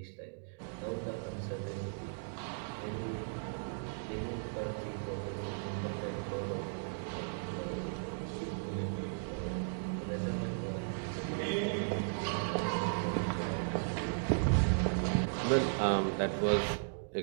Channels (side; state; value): left; silent; digital silence